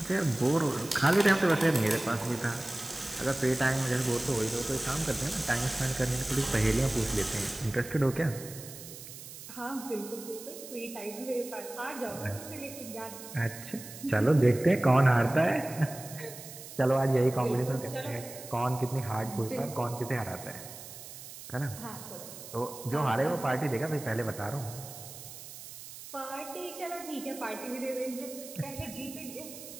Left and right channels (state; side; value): noise; right; hiss, 14 dB below the sound